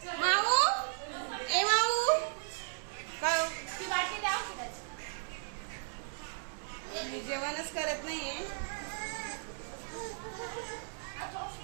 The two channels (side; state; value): left; silent; 54 dB below the other